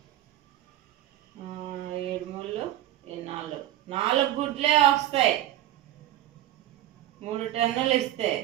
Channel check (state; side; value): quieter; left; 13.3 dB